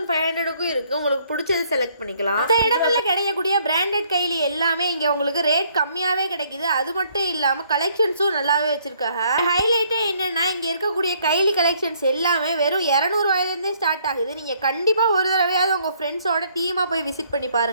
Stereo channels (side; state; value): both; inverted; correlation -0.66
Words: இருக்குது. உங்களுக்கு பிடிச்சது செலக்ட் பண்ணிக்கலாம். மற்ற இடங்களில் கிடைக்கக்கூடிய பிராண்டட் கைலி எல்லாமே இங்கே உங்களுக்கு ரேட் கம்மியாகவே கிடைக்குது. அது மட்டும் இல்லாமல் கலெக்ஷன்ஸும் நல்லாவே வச்சிருக்காங்க. ஹைலைட்டே என்னன்னா இங்க இருக்கக்கூடிய கைலி கலெக்ஷன்ஸ் எல்லாமே வெறும் 200 ரூபாயிலிருந்தே ஸ்டார்ட் ஆகுது. நீங்க கண்டிப்பா ஒரு தடவையாவது உங்க ஃப்ரெண்ட்ஸோட டீமா போய் விசிட் பண்ணி